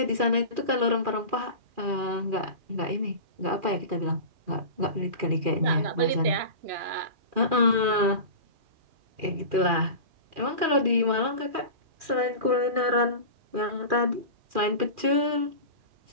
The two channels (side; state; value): left; late; 2.4 ms